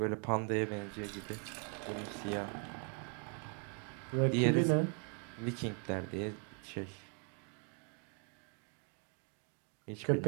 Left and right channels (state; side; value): quieter; left; 39.9 dB